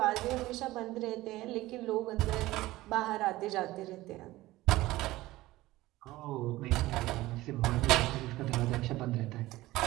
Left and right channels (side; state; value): left; quieter; 17.7 dB